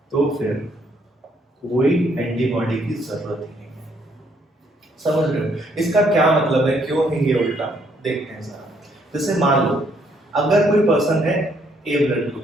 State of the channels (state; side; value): normal; both; correlation 0.69